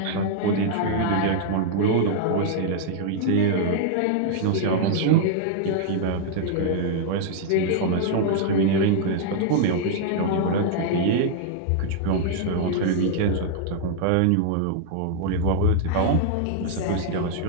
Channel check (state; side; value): different; both; correlation -0.01